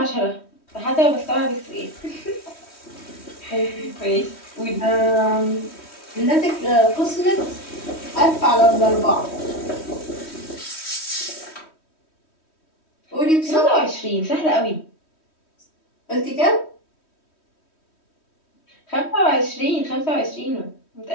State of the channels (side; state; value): right; late; 3.1 ms